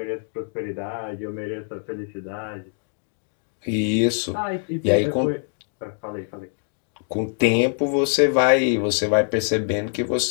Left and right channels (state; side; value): silent; right; 63 dB below the other